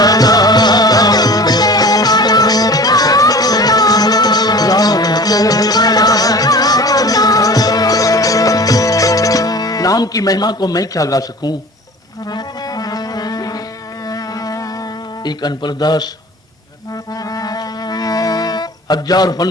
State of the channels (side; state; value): both; normal; correlation 0.41